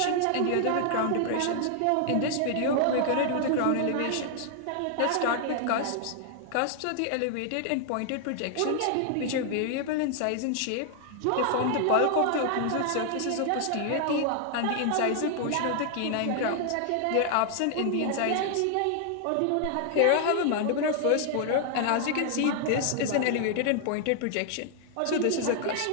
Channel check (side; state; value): both; different; correlation 0.00